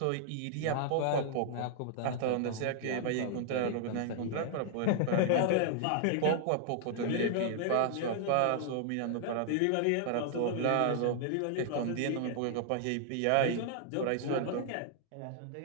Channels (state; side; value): different; both; correlation -0.01